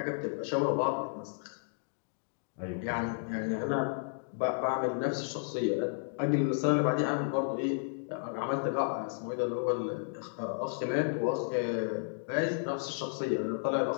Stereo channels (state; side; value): silent; right; digital silence